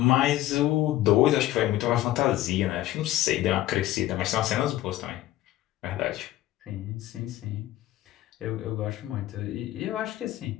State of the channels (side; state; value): right; quieter; 14.8 dB